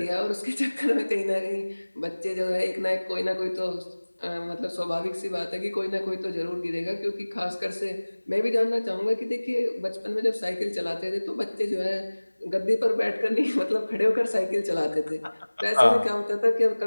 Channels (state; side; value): inverted; both; correlation -1.00